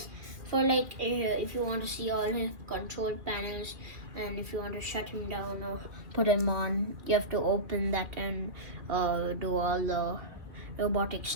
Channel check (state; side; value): late; left; 2.2 ms